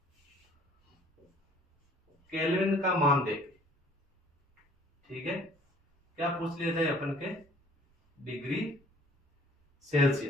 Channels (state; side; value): normal; both; correlation 0.55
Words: केल्विन का मान देके, ठीक है, क्या पूछ लिया जाए अपन के, डिग्री